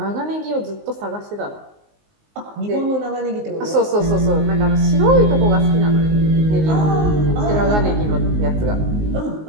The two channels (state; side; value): late; left; 19 ms